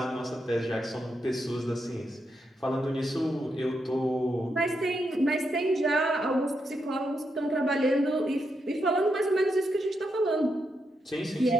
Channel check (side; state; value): both; normal; correlation 0.83